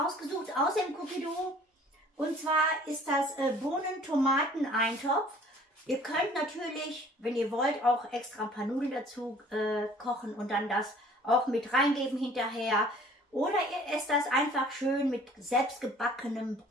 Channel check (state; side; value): normal; both; correlation 0.52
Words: aus dem Cookie-Dough und zwar ist das Bohnen-Tomaten-Eintopf. Ihr könnt natürlich, wenn ihr wollt, auch extra ein paar Nudeln dazu kochen und dann das auch mit reingeben hinterher. Oder ihr esst das einfach schön mit selbstgebackenem